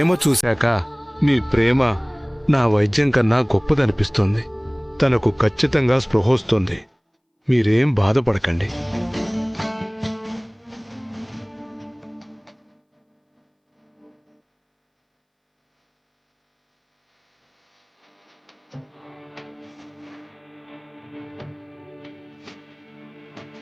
చూశాక మీ ప్రేమ నా వైద్యం కన్నా గొప్పదనిపిస్తుంది. తనకు ఖచ్చితంగా స్పృహొస్తుంది. మీరేం బాధపడకండి.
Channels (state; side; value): identical; both; correlation 1.00